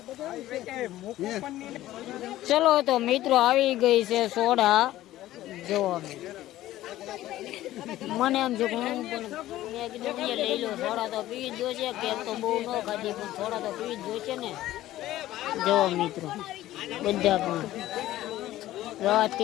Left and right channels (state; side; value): quieter; right; 14.8 dB